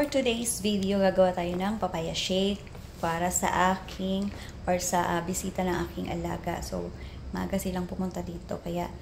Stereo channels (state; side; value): identical; both; correlation 1.00